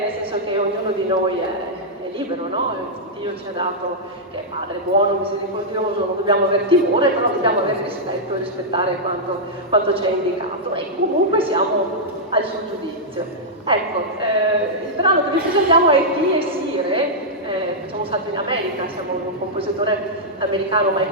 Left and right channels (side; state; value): both; normal; correlation -0.08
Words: senso che ognuno di noi è libero, no? Dio ci ha dato che è Padre buono, misericordioso, non dobbiamo avere timore, però dobbiamo avere rispetto e rispettare quanto ci è indicato e comunque siamo al suo giudizio. Ecco, il brano che vi presentiamo è Di e Sire, facciamo un salto in America, siamo un compositore americano,